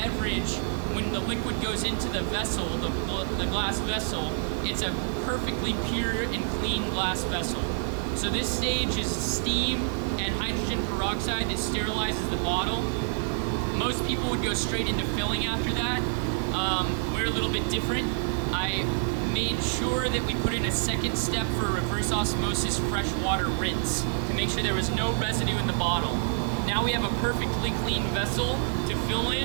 when the liquid goes into the vessel, the glass vessel, it's a perfectly pure and clean glass vessel. So this stage is steam and hydrogen peroxide that sterilizes the bottle. Most people would go straight into filling after that. We're a little bit different. I made sure that we put in a second step for reverse osmosis fresh water rinse to make sure there was no residue in the bottle. Now we have a perfectly clean vessel to fill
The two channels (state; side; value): silent; left; 60 dB below the other